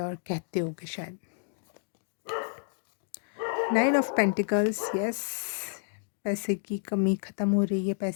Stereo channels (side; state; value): right; silent; digital silence